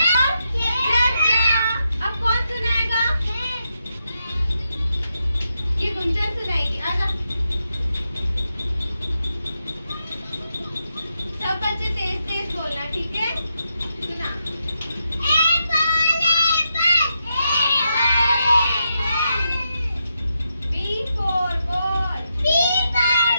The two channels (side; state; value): both; inverted; correlation -0.84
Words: अब कौन सुनाएगा? ये गुंजन सुनाएगी। आजा सब बच्चे तेज तेज बोलना, ठीक है? सुना। B for ball, E